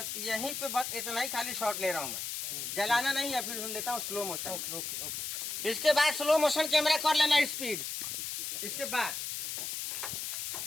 यहीं पे बस इतना ही खाली शॉट ले रहा हूँ मैं, जलाना नहीं है, फिर लेता हूँ स्लो मोशन। इसके बाद स्लो मोशन कैमरा कर लेना स्पीड। इसके बाद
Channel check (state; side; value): noise; left; hiss, 4 dB below the sound